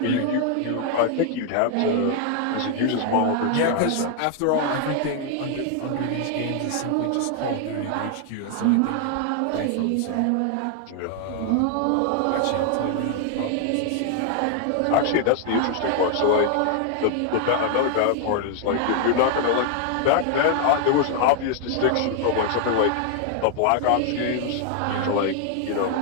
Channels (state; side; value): different; both; correlation 0.00